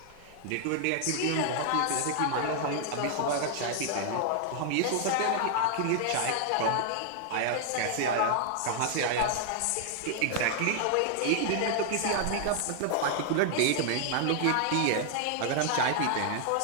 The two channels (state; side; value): different; both; correlation 0.00